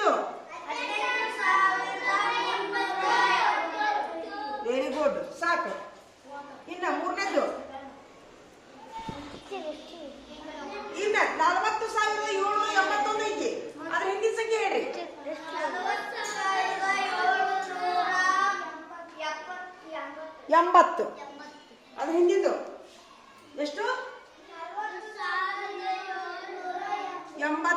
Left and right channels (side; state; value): both; identical; correlation 1.00